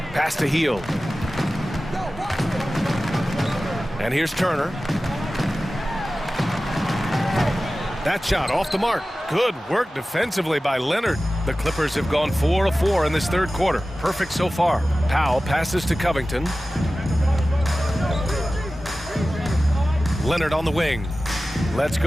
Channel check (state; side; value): normal; both; correlation 0.96